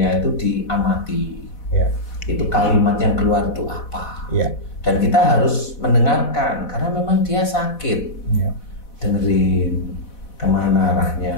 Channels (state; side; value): late; right; 4.1 ms